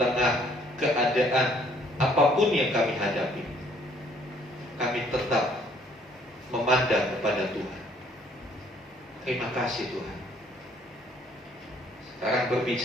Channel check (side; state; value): both; normal; correlation 0.62